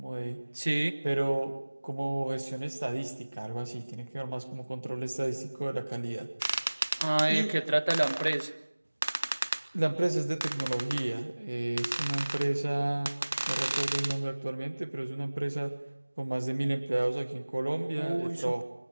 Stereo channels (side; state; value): both; inverted; correlation -1.00